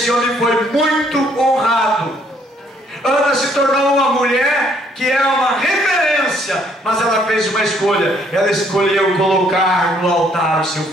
homem foi muito honrado. Ana se tornou uma mulher que é uma referência, mas ela fez uma escolha. Ela escolheu colocar no altar o seu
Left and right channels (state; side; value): normal; both; correlation 0.66